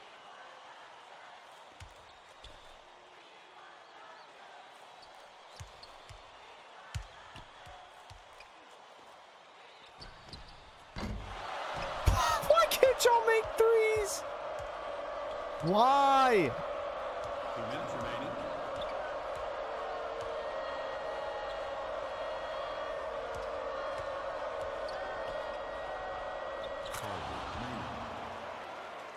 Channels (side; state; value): both; identical; correlation 1.00